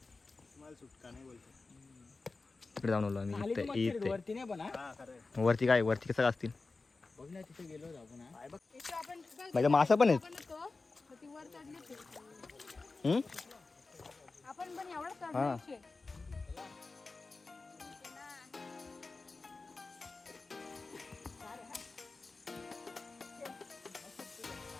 मला सुटका नाही बोलतो. इकडे जाऊन आलो आम्ही खाली इथे तर मच्छर आहेत, इथे. वरती नाही पण हा. वरती काय वरती कसं असतील. बघ ना तिथे गेलो होतो आपण हा. माझ्या मासा पण आहेत. वर चढले होते. हम्म? आपण पण एवढं हा. चढले.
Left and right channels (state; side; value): quieter; right; 3.8 dB